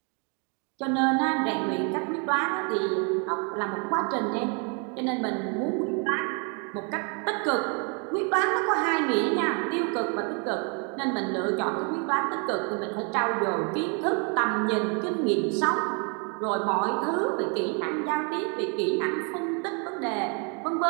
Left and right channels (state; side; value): quieter; left; 36.1 dB